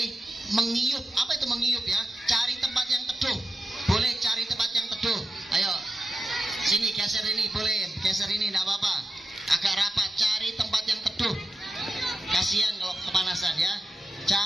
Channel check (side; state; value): both; normal; correlation 0.90